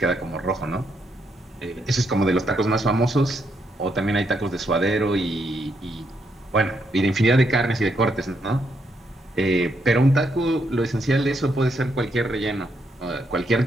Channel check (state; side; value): normal; both; correlation 0.77